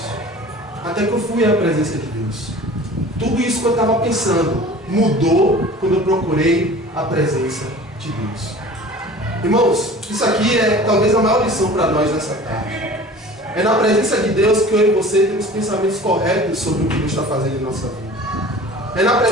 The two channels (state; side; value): normal; both; correlation 0.42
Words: Até que eu fui à presença de Deus. Tudo isso que eu estava pensando mudou quando eu procurei a presença de Deus. Irmãos, isso aqui é talvez a maior lição para nós nessa tarde. É na presença de Deus que eu e você temos pensamentos corretos sobre o que Deus está fazendo em nossa vida. É na